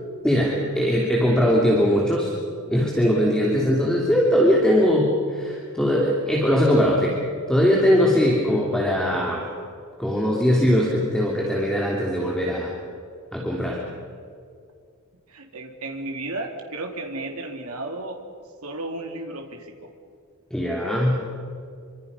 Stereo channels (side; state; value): both; normal; correlation 0.64